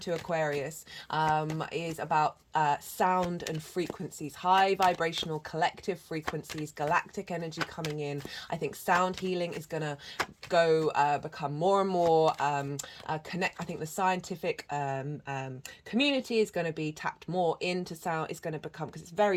Aquarius is about sound and frequencies, high vibrational collective frequencies, galactic energy coming in. I think sound healing is going to become more and more connect. I think the scientific community is going to be tapped more into sound. It's going to become, because it's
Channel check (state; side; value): identical; both; correlation 1.00